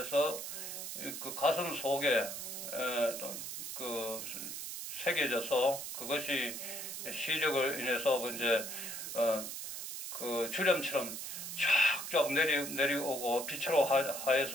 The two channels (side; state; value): right; noise; hiss, 6 dB below the sound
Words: 그 가슴 속에 새겨져서 그것이 시력을 인해서 이제 그 주렴처럼 쫙쫙 내려오고 빛으로